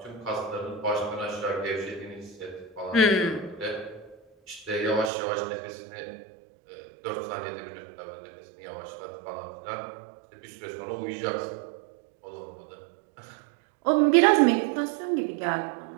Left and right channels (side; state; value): left; drops out; at 5.1 s